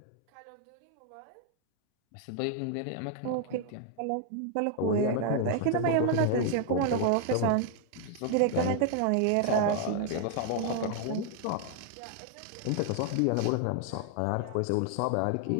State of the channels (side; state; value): both; different; correlation 0.00